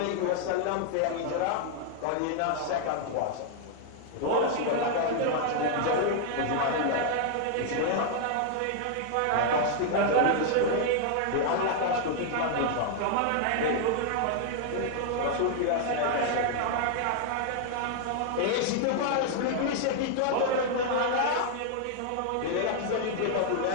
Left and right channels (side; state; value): both; different; correlation 0.00